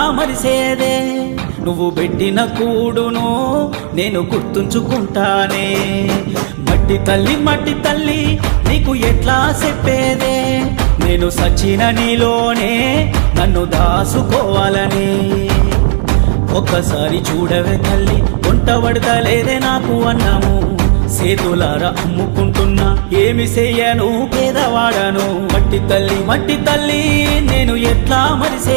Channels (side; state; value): left; silent; digital silence